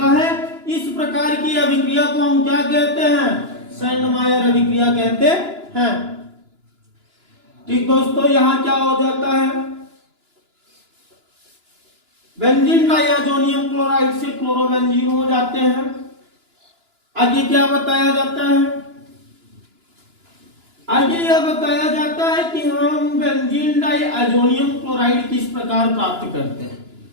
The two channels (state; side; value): late; left; 2.9 ms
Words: है। इस प्रकार की अभिक्रिया को हम क्या कहते हैं, शेंडमायर अभिक्रिया कहते हैं। ठीक दोस्तों, यहां क्या हो जाता है, बेंजीन डाइअजोनियम क्लोराइड से क्लोरोबेंजीन हो जाते हैं। आगे क्या बताया जाता है, आगे यह बताया जाता है कि हम बेंजीन डाइअजोनियम क्लोराइड किस प्रकार प्राप्त करते हैं।